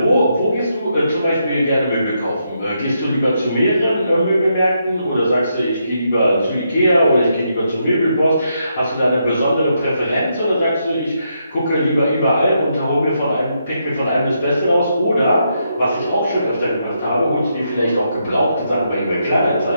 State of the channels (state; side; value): inverted; both; correlation -0.79